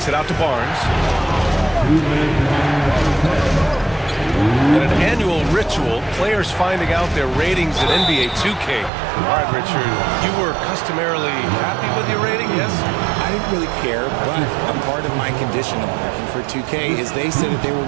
it out to Barnes. And an annual ritual, players finding out their ratings in NBA 2K. All right, Richard, you were customarily happy with your rating, yes? I didn't really care, but a part of my condition of working for 2K is they said that they would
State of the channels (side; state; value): left; drops out; at 8.9 s